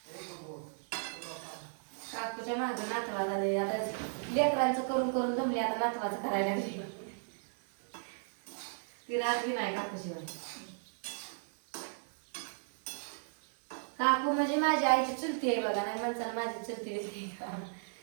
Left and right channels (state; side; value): silent; left; digital silence